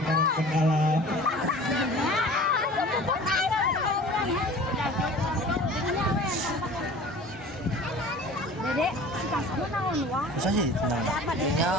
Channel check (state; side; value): normal; both; correlation 0.43